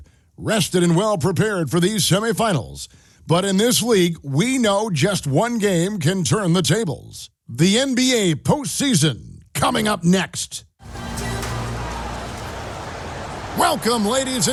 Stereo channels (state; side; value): identical; both; correlation 1.00